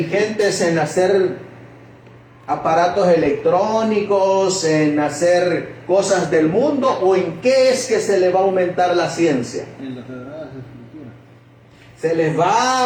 en hacer aparatos electrónicos, en hacer cosas del mundo, o en qué es que se les va a aumentar la ciencia? En las sagradas escrituras. Se les va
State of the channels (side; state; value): both; identical; correlation 1.00